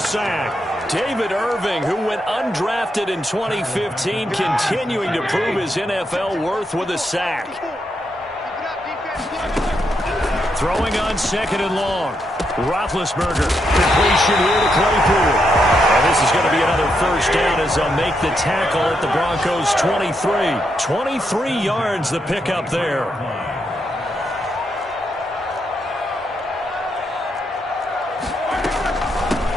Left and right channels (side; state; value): both; normal; correlation 0.81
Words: David Irving, who went undrafted in 2015, continuing to prove his NFL worth with a sack. Throwing on 2nd and long. Roethlisberger. Completion here to Claypool. And this is going to be another 1st down as they'll make the tackle at the Broncos' 23. 23 yards the pickup there.